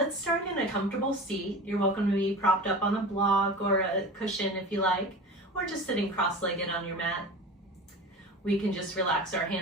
start in a comfortable seat. You're welcome to be propped up on a block or a cushion if you like, or just sitting cross-legged on your mat. We can just relax our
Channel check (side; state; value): both; normal; correlation 0.33